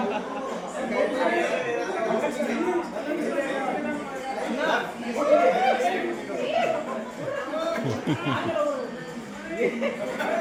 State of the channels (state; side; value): identical; both; correlation 1.00